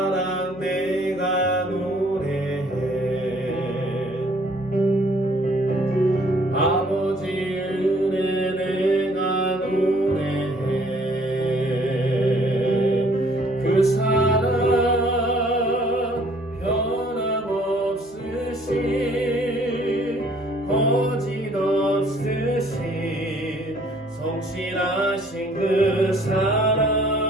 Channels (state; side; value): normal; both; correlation 0.59